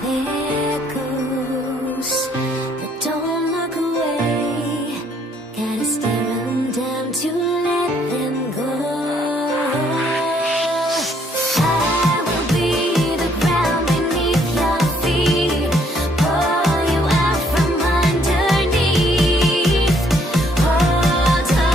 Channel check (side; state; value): both; normal; correlation 0.66